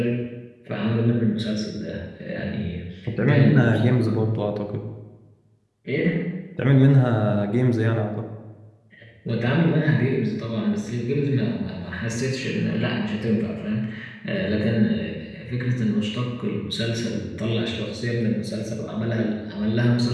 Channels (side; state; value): both; identical; correlation 1.00